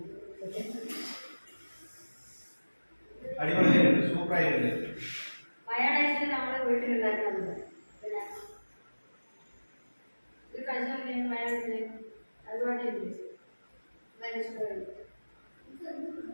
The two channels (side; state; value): both; inverted; correlation -1.00